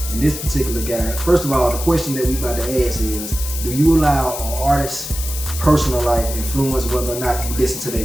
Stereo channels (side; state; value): left; noise; hiss, 8 dB below the sound